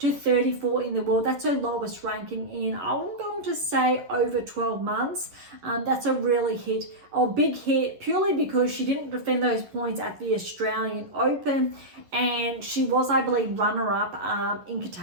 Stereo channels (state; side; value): late; left; 11 ms